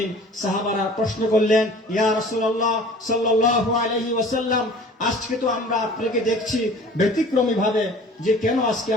সাহাবারা প্রশ্ন করলেন, ইয়া রাসূলুল্লাহ সাল্লাল্লাহু আলাইহি ওয়াসাল্লাম, আজকে তো আমরা আপনাকে দেখছি ব্যতিক্রমী ভাবে, যে কেন আজকে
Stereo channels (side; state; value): both; normal; correlation 0.46